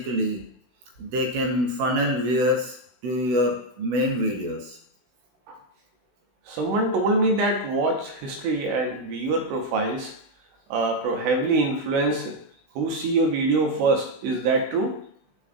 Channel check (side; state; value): left; late; 16 ms